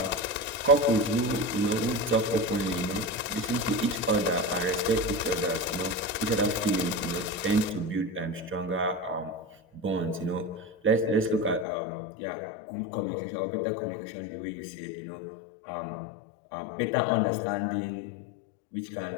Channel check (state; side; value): drops out; right; at 11.7 s